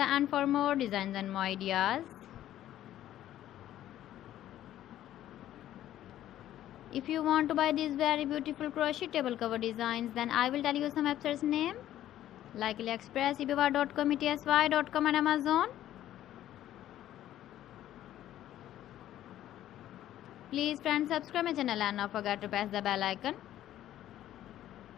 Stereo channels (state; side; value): quieter; right; 12.6 dB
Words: end for more designs and more ideas. If you want to buy these very beautiful crochet table cover designs, then I will tell you some websites name like AliExpress, eBay.com, ETSY.com and Amazon. Please friends, subscribe my channel and not forget to press the bell icon.